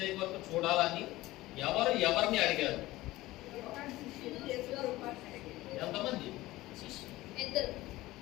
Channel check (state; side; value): quieter; right; 17.9 dB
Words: వరకు చూడాలని ఎవరిని అడిగారు? ఎంతమంది?